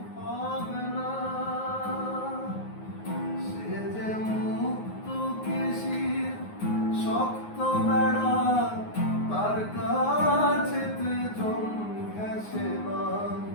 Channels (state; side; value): late; right; 9.5 ms